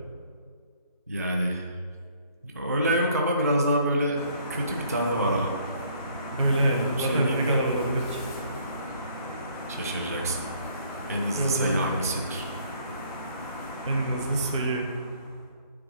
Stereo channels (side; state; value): both; inverted; correlation -0.61